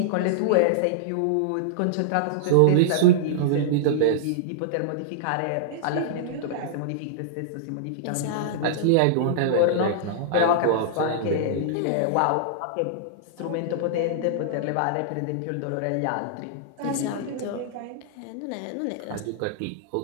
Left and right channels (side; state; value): both; different; correlation -0.01